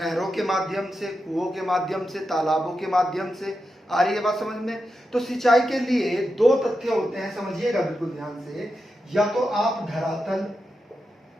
के माध्यम से, कुओं के माध्यम से, तालाबों के माध्यम से। आ रही है बात समझ में। तो सिंचाई के लिए दो तथ्य होते हैं, समझिएगा बिल्कुल ध्यान से। या तो आप धरातल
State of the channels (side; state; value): both; normal; correlation 0.88